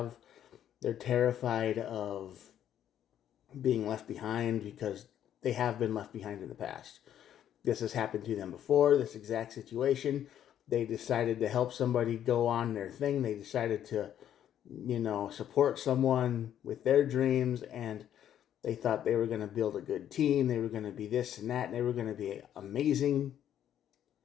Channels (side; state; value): right; quieter; 10.5 dB